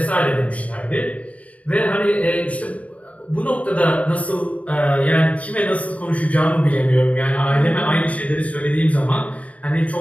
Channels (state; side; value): late; right; 0.067 ms